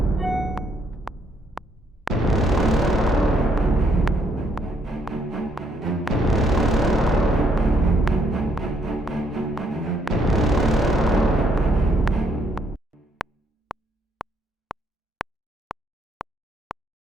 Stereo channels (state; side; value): normal; both; correlation 0.71